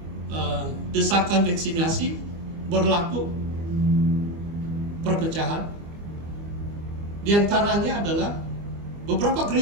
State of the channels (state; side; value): late; left; 25 ms